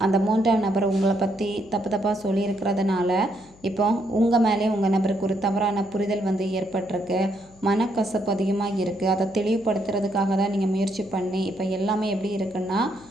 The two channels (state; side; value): noise; left; hum, 26 dB below the sound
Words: அந்த 3ஆம் நபர் உங்களை பற்றி தப்பு தப்பாக சொல்லியிருக்கிறதுனால இப்போ உங்கள் மேலே உங்கள் நபருக்கு ஒரு தவறான புரிதல் வந்து ஏற்பட்டிருக்கு. மனக்கசப்பு அதிகமாக இருக்குது. அதை தெளிவுபடுத்துறதுக்காக தான் நீங்கள் முயற்சி பண்ணி இப்போ எல்லாமே எப்படி இருக்குன்னா